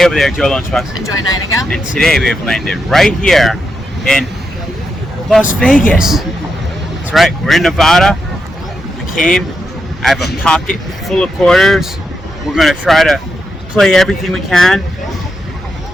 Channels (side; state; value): both; normal; correlation 0.84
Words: over there, Joe Lunchbox. Enjoy Nightingale. And today we have landed right here in Las Vegas. That's right, we're in Nevada. We came, I have a pocket full of quarters. We're gonna try to play everything we can.